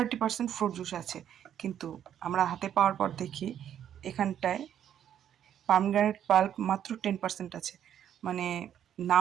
ফ্রুট জুস আছে, কিন্তু আমরা হাতে পাওয়ার পর দেখি এখানটায় পামগ্রানেট পাল্প মাত্র 10% আছে। মানে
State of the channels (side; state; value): left; quieter; 10.0 dB